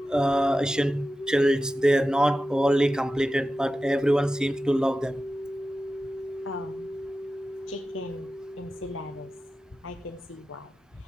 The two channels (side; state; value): both; normal; correlation 0.93